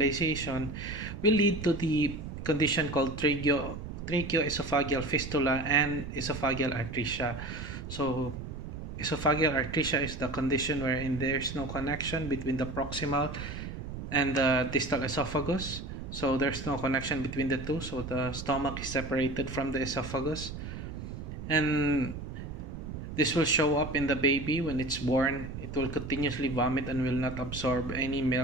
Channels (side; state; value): right; noise; rumble, 8 dB below the sound